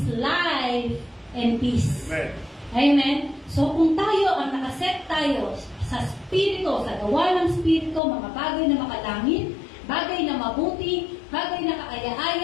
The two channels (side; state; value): right; drops out; at 8.0 s